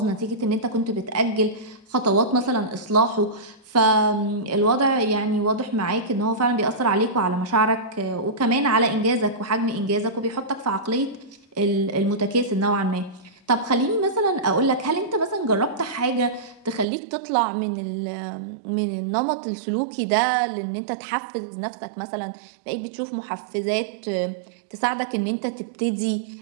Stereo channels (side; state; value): left; drops out; at 16.9 s